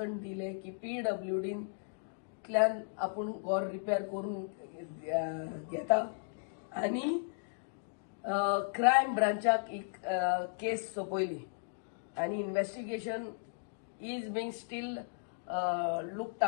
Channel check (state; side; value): silent; right; digital silence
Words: दिले की PWDंतल्यान आपूण घर रिपेर करून घेता आनी क्रायम ब्रांचाक एक केस सोपयली आनी investigation is being steel looked